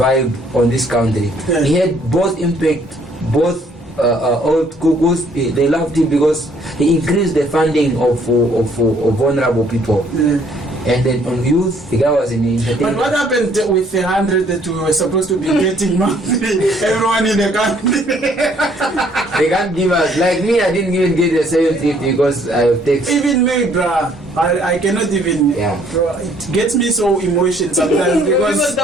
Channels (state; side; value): normal; both; correlation 0.63